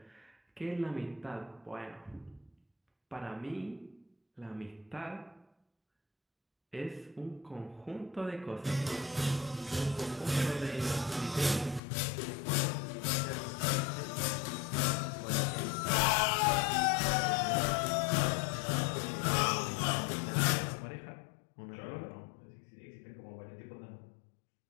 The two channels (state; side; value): drops out; right; at 11.8 s